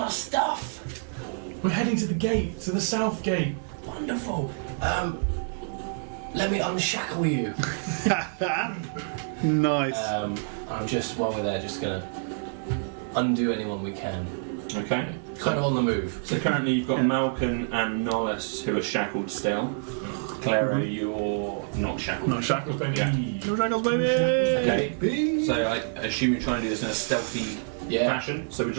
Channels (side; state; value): left; silent; digital silence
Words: stuff. we're heading to the gate, to the south gate. Wonderful. let me unshackle you. Nice. I'm just, while we're there, just gonna undo anyone we can. Okay. Kind of on the move. So currently you've got Malcolm and Nollis who are shackled still. Claro, you're not shackled. Not shackled, baby. Yeah. No shackles, baby. Okay. So I assume you're trying to do this in a stealthy fashion. So would